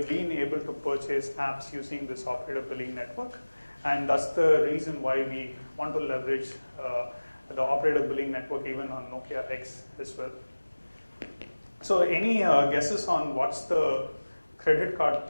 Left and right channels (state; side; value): inverted; both; correlation -1.00